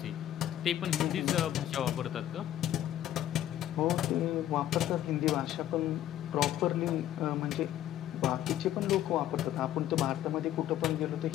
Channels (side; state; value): right; quieter; 12.4 dB